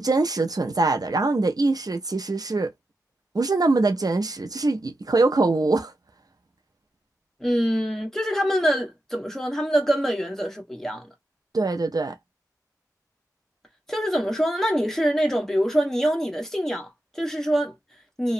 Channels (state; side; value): normal; both; correlation 0.87